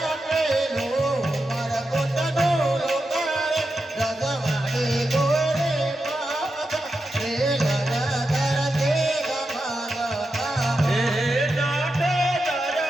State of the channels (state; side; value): normal; both; correlation 0.88